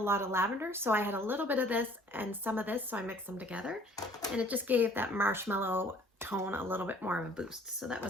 of lavender. So I had a little bit of this and some of this, so I mixed them together. And it just gave that marshmallow tone a little bit more of a boost. So that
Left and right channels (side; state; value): both; normal; correlation 0.54